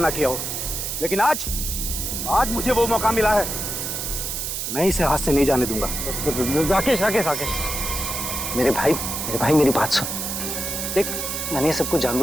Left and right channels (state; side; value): noise; right; hiss, 3 dB below the sound